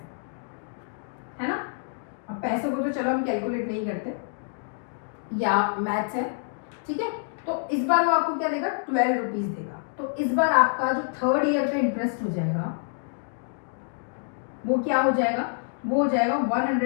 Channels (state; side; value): silent; right; digital silence